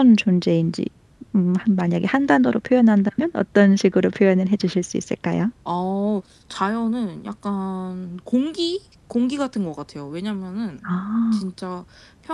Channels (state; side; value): identical; both; correlation 1.00